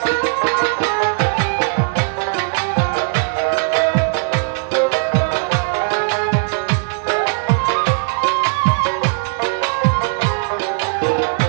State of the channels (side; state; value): left; silent; 67 dB below the other